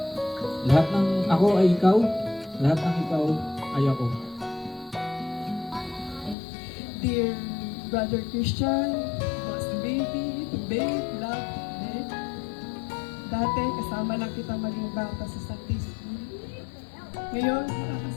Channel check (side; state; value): right; drops out; at 6.4 s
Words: Lahat ng ako ay ikaw, lahat ng ikaw ay ako. Dear Brother Christian, Boss Baby, Babe, Love, Babe. Dati kasama lang kita maging bata sa Sunday School. Ngayon,